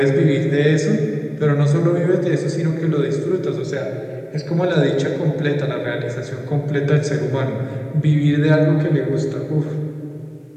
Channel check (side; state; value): both; identical; correlation 1.00